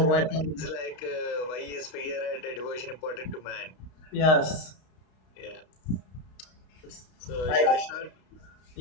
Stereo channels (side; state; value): right; late; 32 ms